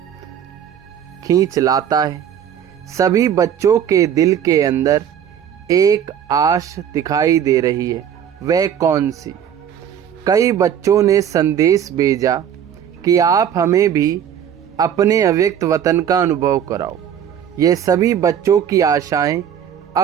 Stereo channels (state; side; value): quieter; left; 9.1 dB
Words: लाता है। सभी बच्चों के दिल के अंदर एक आश दिखाई दे रही है। वह कौन सी? कई बच्चों ने संदेश भेजा कि आप हमें भी अपने अव्यक्त वतन का अनुभव कराओ। ये सभी बच्चों की आशाएं